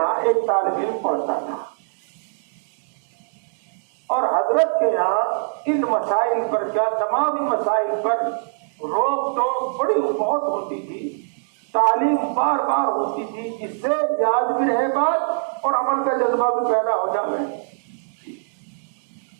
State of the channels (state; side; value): silent; left; digital silence